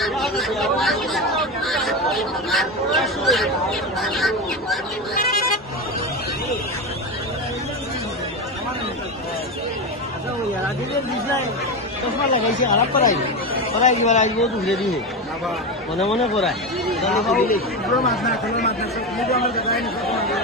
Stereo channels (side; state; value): both; normal; correlation 0.17